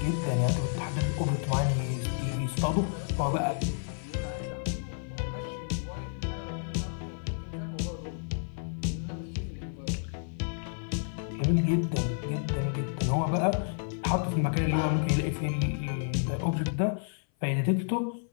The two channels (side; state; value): right; silent; 57 dB below the other